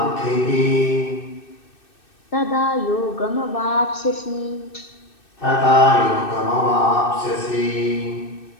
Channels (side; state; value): right; late; 2.6 ms